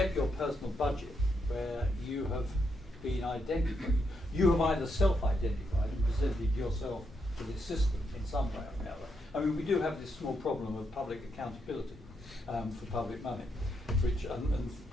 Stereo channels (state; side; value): normal; both; correlation 0.80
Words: your personal budget where you have been identified. You have either self-identified and presented yourself to the system in some way or another. I mean, we do have this small problem of public accountability for public money, which and a